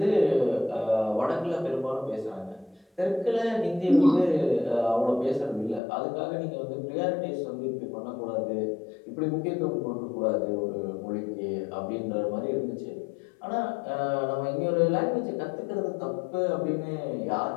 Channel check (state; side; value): drops out; right; at 5.8 s